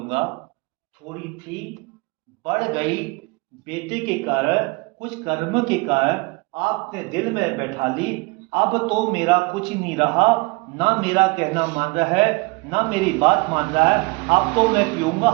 थोड़ी थी बढ़ गई बेटे के कारण, कुछ कर्म के कारण आपने दिल में बैठा ली। अब तो मेरा कुछ नहीं रहा, ना मेरा कहना मान रहा है, ना मेरी बात मान रहा है। अब तो मैं पीऊँगा,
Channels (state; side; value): quieter; left; 26.3 dB